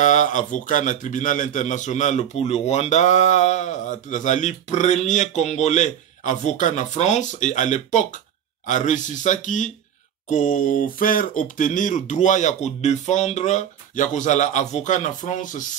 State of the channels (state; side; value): quieter; left; 9.4 dB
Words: avocat na tribunal international pour le Rwanda, Azali premier Congolais avocat na France, et à l'époque, a réussi ça qui, ko faire obtenir droit ya ko défendre ya ko zala avocat na France